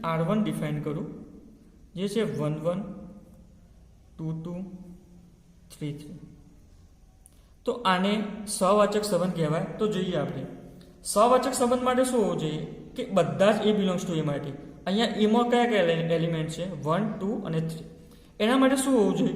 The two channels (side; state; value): both; identical; correlation 1.00